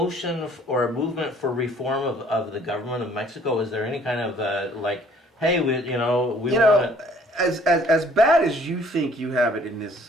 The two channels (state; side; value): normal; both; correlation 0.58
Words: or movement for reform of the government of Mexico? Is there any kind of like, hey, we want to... as bad as you think you have it in this